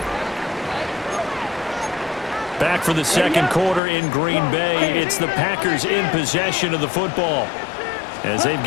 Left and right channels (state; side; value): drops out; right; at 3.8 s